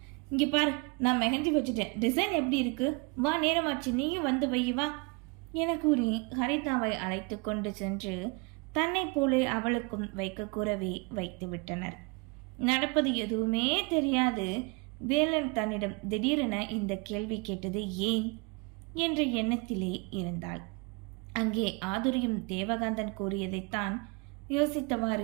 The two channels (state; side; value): quieter; left; 30.3 dB